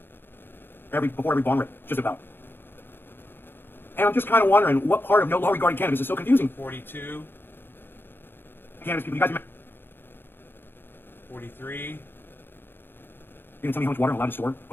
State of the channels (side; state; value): right; late; 0.10 ms